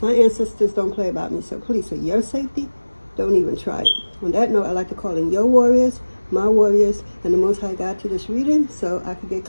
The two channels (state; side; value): inverted; both; correlation -1.00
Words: My ancestors don't play about me, so please, for your safety, don't even try it. On that note, I like to call in your warriors, my warriors, and the Most High God to this reading so I can get